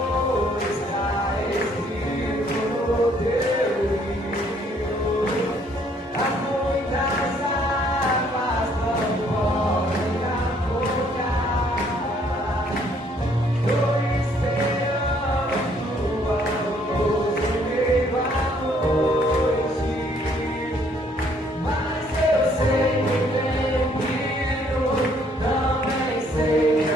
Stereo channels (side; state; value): both; normal; correlation 0.64